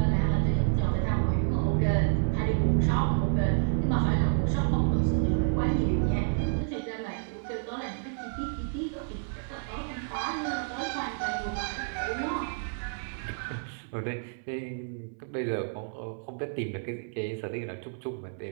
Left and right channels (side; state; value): left; silent; 58 dB below the other